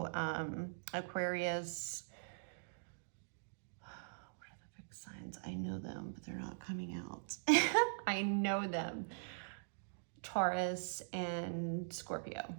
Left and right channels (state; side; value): silent; left; digital silence